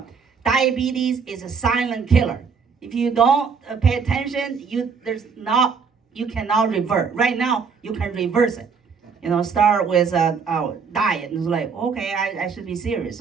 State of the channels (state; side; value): quieter; left; 5.6 dB